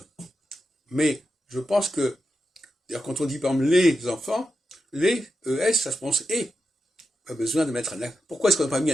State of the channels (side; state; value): both; normal; correlation 0.88